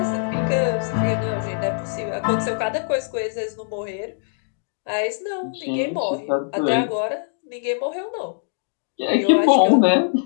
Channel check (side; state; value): right; silent; digital silence